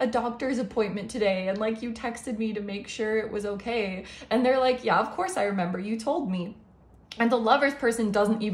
doctor's appointment today, and like you texted me to make sure it was okay. And they're like, yeah, of course I remember, you told me. And the Lovers person doesn't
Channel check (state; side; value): identical; both; correlation 1.00